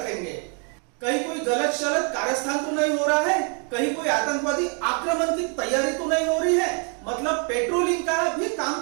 कहीं कोई गलत शलत कारस्थान तो नहीं हो रहा है, कहीं कोई आतंकवादी आक्रमण की तैयारी तो नहीं हो रही है। मतलब पेट्रोलिंग का भी काम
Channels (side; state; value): left; quieter; 38.3 dB